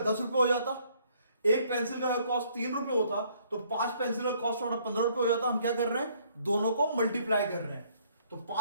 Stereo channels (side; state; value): both; inverted; correlation -0.64